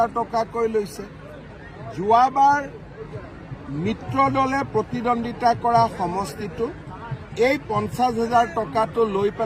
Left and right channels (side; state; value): both; identical; correlation 1.00